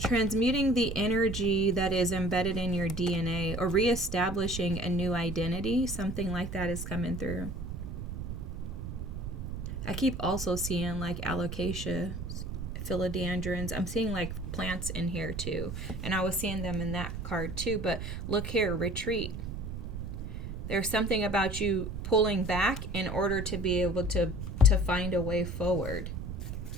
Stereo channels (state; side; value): noise; right; rumble, 6 dB below the sound